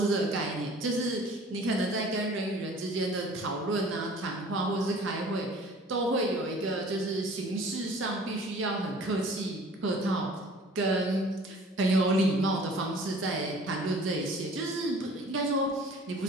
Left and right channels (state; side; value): normal; both; correlation 0.49